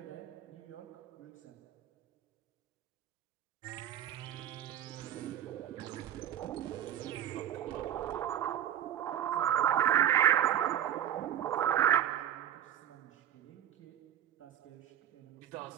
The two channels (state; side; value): quieter; left; 10.8 dB